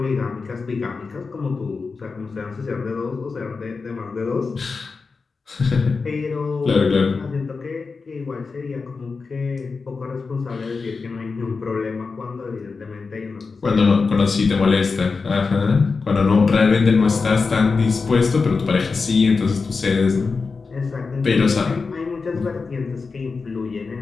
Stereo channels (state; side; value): quieter; right; 4.5 dB